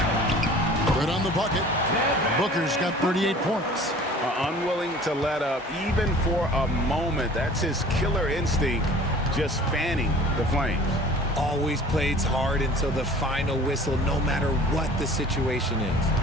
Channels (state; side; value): normal; both; correlation 0.47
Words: on the bucket. Booker's got 38 points. Unwilling to let up even for a moment. That's his killer instinct, just fanning the flames. Always plays hard until the final whistle, no matter what the situation is.